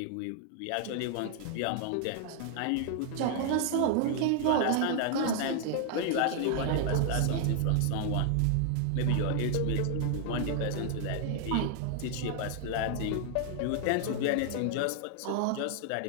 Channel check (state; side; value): different; both; correlation 0.00